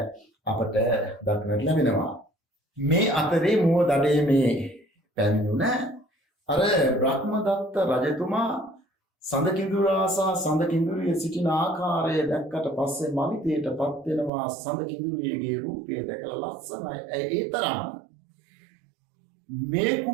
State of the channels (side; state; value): left; drops out; at 14.3 s